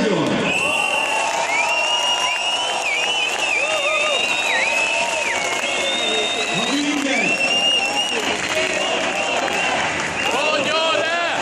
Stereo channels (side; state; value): both; identical; correlation 1.00